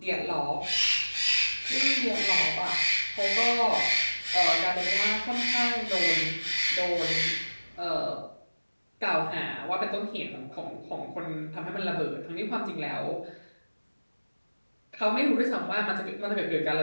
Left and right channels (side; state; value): both; inverted; correlation -1.00